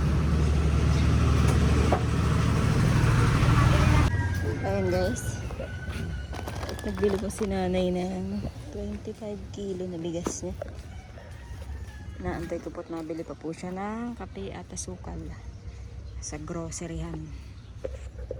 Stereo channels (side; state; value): both; identical; correlation 1.00